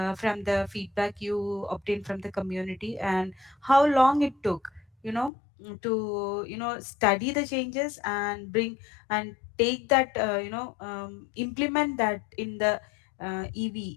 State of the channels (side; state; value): right; drops out; at 5.3 s